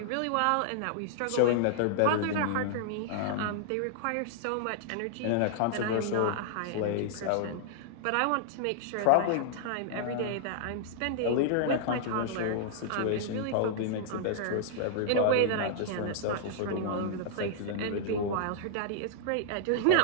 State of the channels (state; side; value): different; both; correlation -0.01